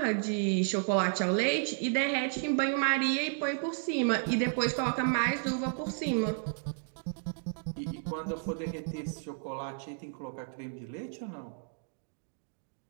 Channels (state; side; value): silent; left; digital silence